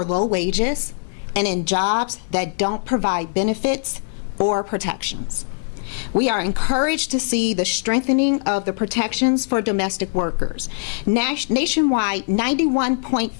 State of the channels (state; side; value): silent; right; 65 dB below the other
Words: low wages and in jobs that don't provide benefits or protections. We are encouraged to see the strengthening of the protections for domestic workers. Nationwide,